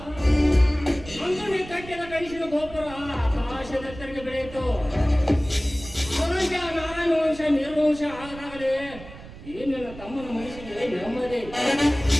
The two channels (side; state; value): right; noise; rumble, 16 dB below the sound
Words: ಅಂಗಡಿ ಕಟ್ಟಿದ ಕನಸಿನ ಗೋಪುರ ಆಕಾಶದೆತ್ತರಿಗೆ ಬೆಳೆಯಿತು. ಅವರಂತೆ ಆ ನಾರಾಯಣ ವಂಶ ನಿರ್ವಂಶ ಆದಾಗಲೇ ಏನಿಲ್ಲ ತಮ್ಮನ ಮನಸ್ಸಿಗೆ ನೆಮ್ಮದಿ.